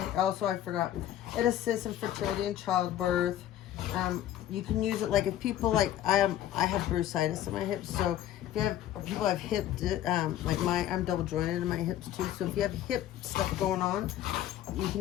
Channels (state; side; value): quieter; right; 12.0 dB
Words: I forgot. It assists in fertility and childbirth. You can use it like if people like I have bursitis in my hips, so if you have people have hip like I'm double jointed in my hips too. So if you have hip stuff going on, you